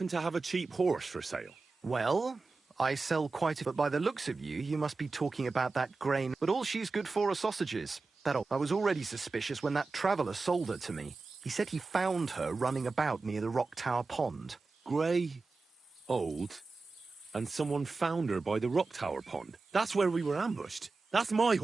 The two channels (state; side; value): quieter; left; 3.9 dB